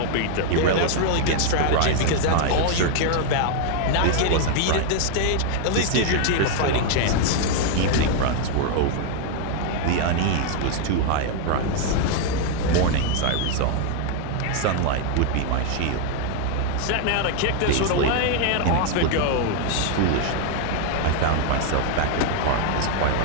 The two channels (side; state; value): both; different; correlation 0.00